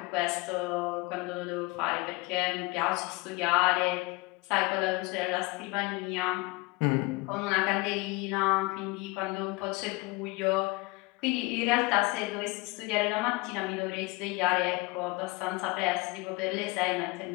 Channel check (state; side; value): quieter; right; 24.2 dB